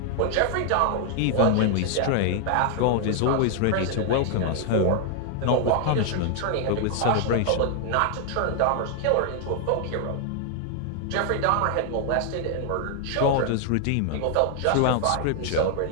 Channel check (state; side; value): different; both; correlation 0.00